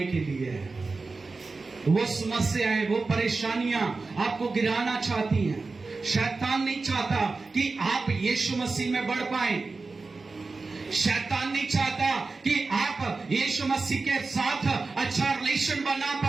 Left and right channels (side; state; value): left; quieter; 3.9 dB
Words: के लिए है, वो समस्याएं, वो परेशानियां आपको गिराना चाहती हैं। शैतान नहीं चाहता कि आप यीशु मसीह में बढ़ पाएं। शैतान नहीं चाहता कि आप यीशु मसीह के साथ अच्छा रिलेशन बना